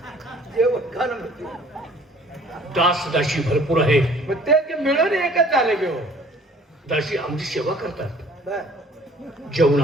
जेवण खाणं म्हणते. दास दाशी भरपूर आहे. मग ते की मिळून एकच झालं की हो. दाशी आमची सेवा करतात. बर.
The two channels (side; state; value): both; normal; correlation 0.53